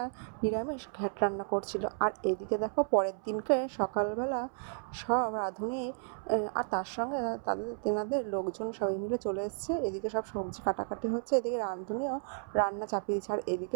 নিরামিষ ঘ্যাট রান্না করছিল। আর এদিকে দেখো পরের দিনকে সকালবেলা সব রাঁধুনি আর তার সঙ্গে তেনাদের লোকজন সবাই মিলে চলে এসছে। এদিকে সব সবজি কাটাকাটি হচ্ছে, এদিকে রাঁধুনিও রান্না চাপিয়ে দিচ্ছে। আর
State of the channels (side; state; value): left; silent; 56 dB below the other